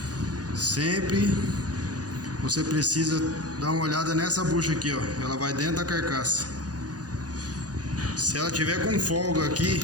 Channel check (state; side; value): late; left; 0.68 ms